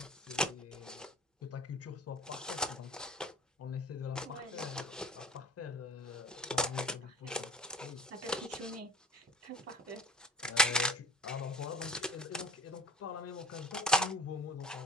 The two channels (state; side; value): normal; both; correlation 0.46